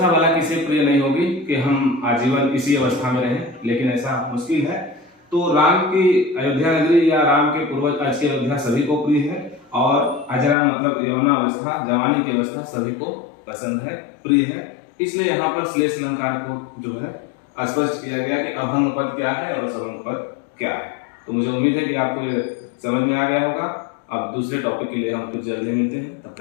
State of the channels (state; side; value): drops out; right; at 10.6 s